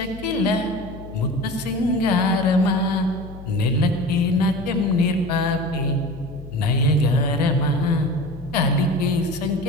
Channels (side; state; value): left; noise; hum, 15 dB below the sound